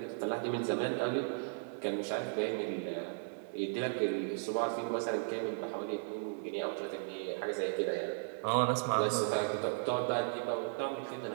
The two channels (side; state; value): left; silent; digital silence